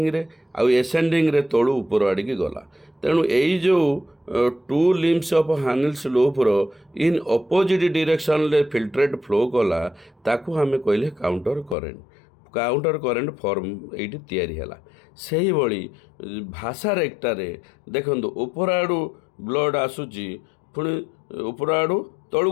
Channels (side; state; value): right; drops out; at 11.8 s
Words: रे आउ एसेंडिंग रे तलू ऊपर आड़िकी गला। तेणु यही जो 2 limbs ऑफ हानिल स्लोप रो इन ऑपोजिट डायरेक्शन रे फिल्ट्रेट फ्लो कला ताकू हमें कहले काउंटर करेंट फॉर्म ये तैयारी है। से ही भासारेक्टा रे देखो ऊपर आड़ू ब्लड आसूची पुणी ऊपर आड़ू तलू